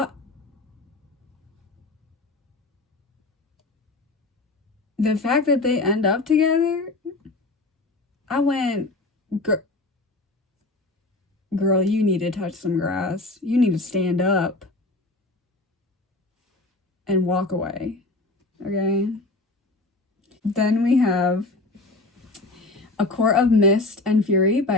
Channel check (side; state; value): right; quieter; 3.0 dB